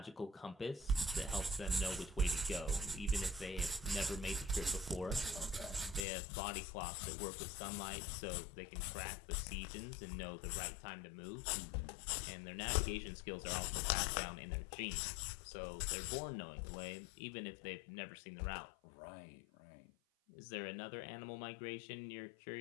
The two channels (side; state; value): right; drops out; at 6.1 s